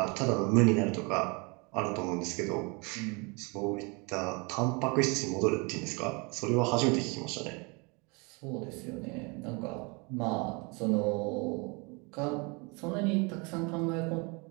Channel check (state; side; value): quieter; left; 30.2 dB